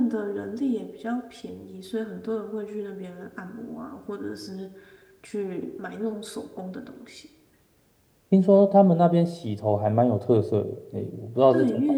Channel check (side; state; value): both; identical; correlation 1.00